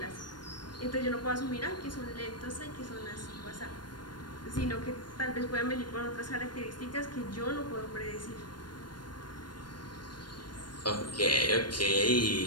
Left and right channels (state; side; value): late; right; 0.71 ms